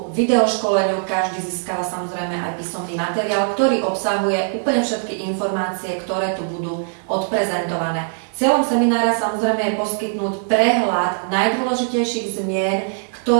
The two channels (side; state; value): left; silent; 65 dB below the other